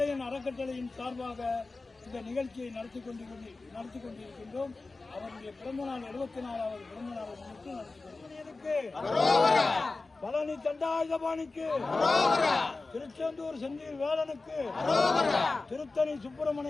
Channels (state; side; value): quieter; right; 3.6 dB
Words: அறக்கட்டளையின் சார்பாக இந்த நிகழ்ச்சியை நடத்தி கொண்டிருக்கின்றோம். அவருடைய பிறந்தநாள் 74வது பிறந்தநாளை முன்னிட்டு நடத்தி கொண்டிருக்கிறோம். பழனி தண்டாயுதபாணிக்கு, திருச்செந்தூர் செந்தில் வேலனுக்கு, திருத்தணி